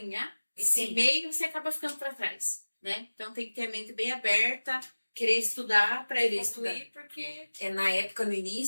esse Sim. meio, você acaba ficando para trás, né? Então tem que ter a mente bem aberta, querer estudar para evoluir, porque Na época, no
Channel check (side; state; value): both; inverted; correlation -1.00